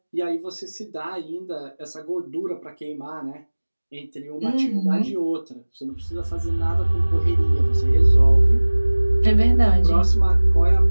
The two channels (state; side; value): inverted; both; correlation -1.00